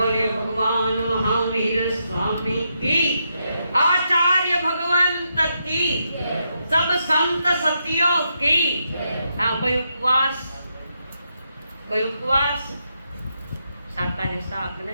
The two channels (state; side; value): inverted; both; correlation -0.82